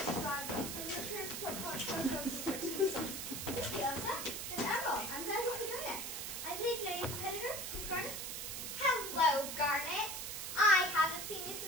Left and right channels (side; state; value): right; noise; hiss, 5 dB below the sound